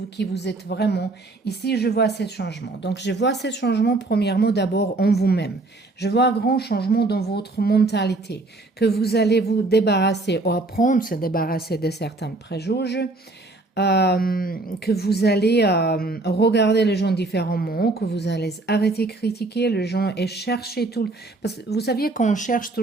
qui vous êtes vraiment. Ici, je vois ce changement. Donc, je vois ce changement, premièrement, d'abord en vous-même. Je vois un grand changement dans votre mentalité, que vous allez vous débarrasser, ou apprendre à se débarrasser de certains préjugés, que vous allez regarder les gens différemment, que vous allez arrêter de critiquer les gens et chercher tout. Parce que vous saviez qu'on cherche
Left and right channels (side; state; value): left; quieter; 3.1 dB